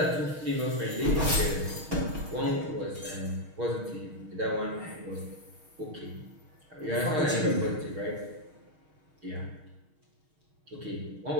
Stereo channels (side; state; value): left; late; 6.5 ms